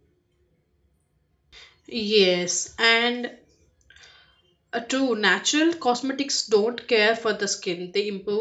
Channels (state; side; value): identical; both; correlation 1.00